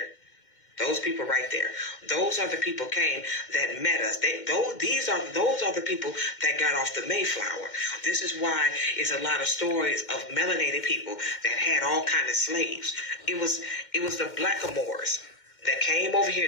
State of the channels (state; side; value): late; right; 2.1 ms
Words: Those people right there. Those are the people that met us. Those are the people that got off the Mayflower. This is why it's a lot of stories of melanated people that had all kind of slaves. It was the blackamoors that came over